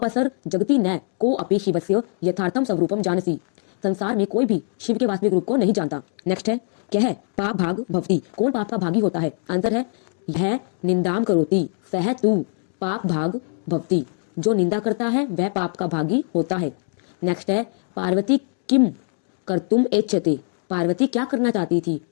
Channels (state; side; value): silent; right; 58 dB below the other